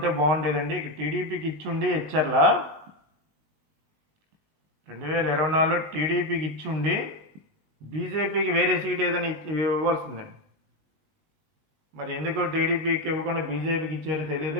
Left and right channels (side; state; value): left; late; 20 ms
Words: బాగుండేదండి. ఇక టీడీపీకి ఇచ్చుండి హెచ్ఆర్ల 2024లో టీడీపీకి ఇచ్చుండి బీజేపీకి వేరే సీట్ ఏదైనా ఇవ్వాల్సిందండి. మరి ఎందుకు టీడీపీకి ఇవ్వకుండా బీజేపీకి ఇచ్చారో తెలియదు.